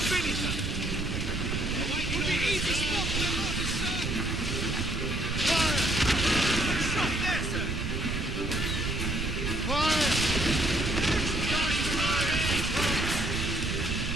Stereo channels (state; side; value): noise; right; rumble, 3 dB below the sound